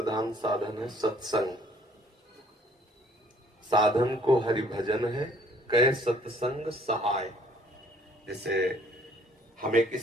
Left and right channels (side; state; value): both; normal; correlation 0.60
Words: साधन है सत्संग। साधन को हरि भजन है, कह सत्संग सहाय। जैसे हमें